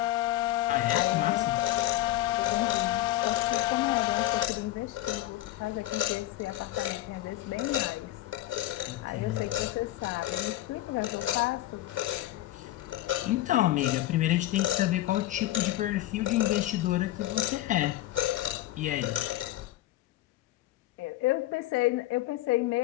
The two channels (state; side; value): quieter; right; 15.5 dB